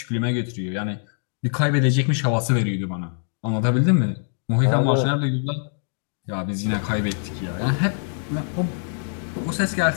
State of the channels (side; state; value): right; silent; digital silence